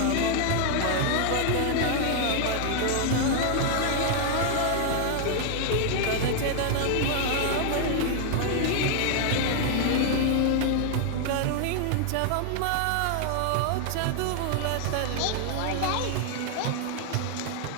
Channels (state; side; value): different; both; correlation 0.00